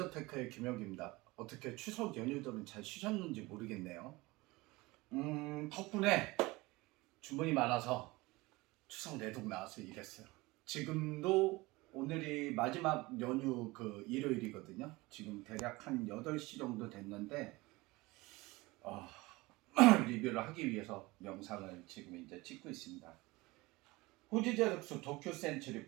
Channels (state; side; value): quieter; left; 21.9 dB